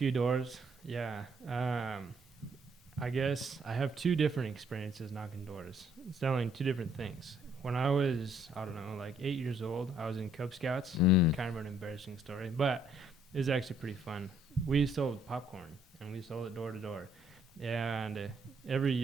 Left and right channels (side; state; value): both; normal; correlation 0.66